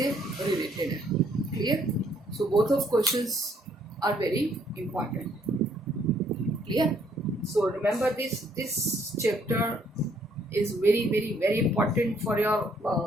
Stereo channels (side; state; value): both; normal; correlation 0.66